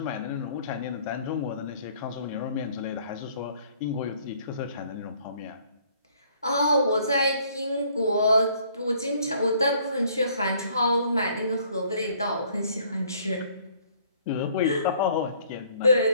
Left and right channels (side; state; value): both; inverted; correlation -0.61